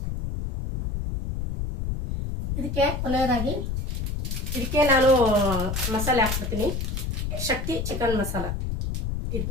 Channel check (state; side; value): noise; left; rumble, 3 dB below the sound